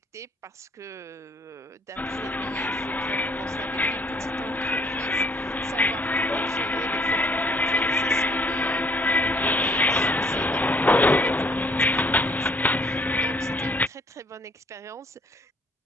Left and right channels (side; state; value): both; normal; correlation 0.62